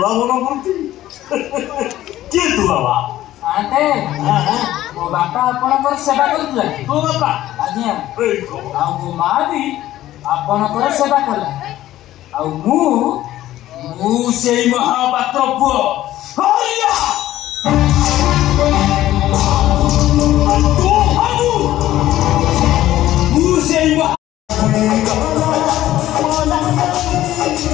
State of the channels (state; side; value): quieter; right; 14.1 dB